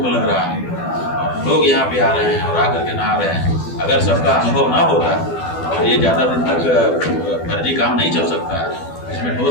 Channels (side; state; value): right; late; 12 ms